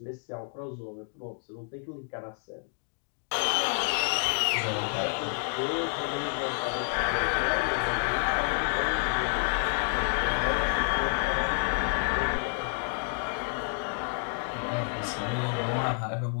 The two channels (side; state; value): right; silent; 58 dB below the other